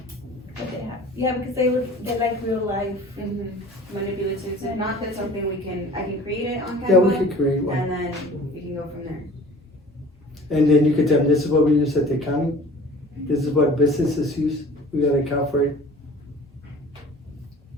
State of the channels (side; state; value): both; normal; correlation 0.45